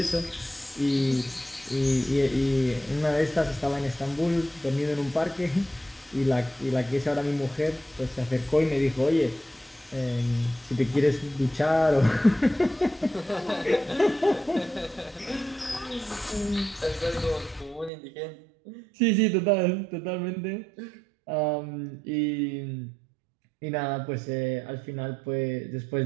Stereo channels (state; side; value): drops out; left; at 17.9 s